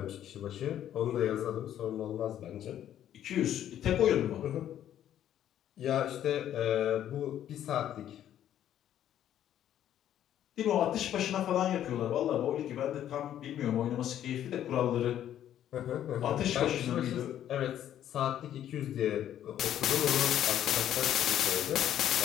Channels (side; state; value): right; quieter; 11.1 dB